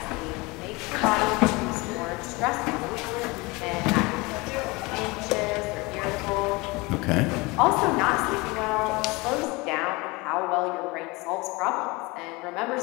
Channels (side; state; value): right; quieter; 24.6 dB